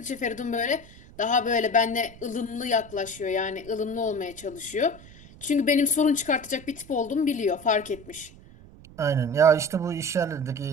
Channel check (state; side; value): noise; right; rumble, 20 dB below the sound